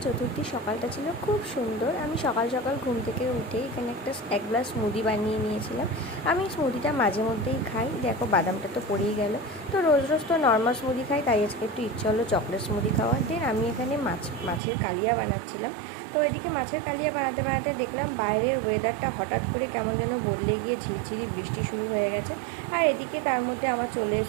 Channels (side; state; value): left; drops out; at 14.6 s